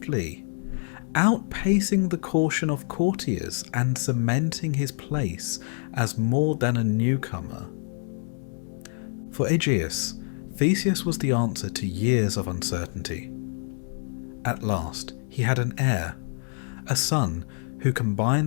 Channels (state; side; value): silent; right; 60 dB below the other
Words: outpacing the caution of courtiers and cementing his place as more than a newcomer. For Aegeus, Theseus was the answer to years of uncertainty. At last, he had an heir, a son who